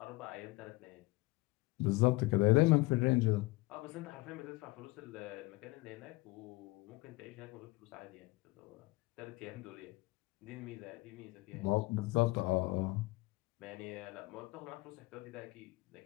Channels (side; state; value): right; quieter; 22.5 dB